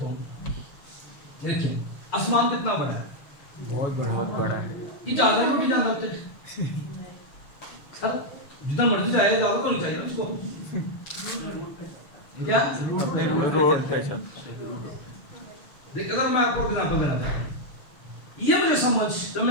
ہوں. دیکھیں آسمان کتنا بڑا ہے، بہت بڑا ہے. یہ جانا ہے نہیں جانا ہوتے سر، جتنا مرضی جائے جانا تو نہیں چاہیے نا اس کو. کیا روڈ پہ چل. دیکھ اگر میں آپ کو ایگزامپل دینا چاہتا ہوں، یہ مجھے سمجھ جب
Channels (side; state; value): right; late; 6.6 ms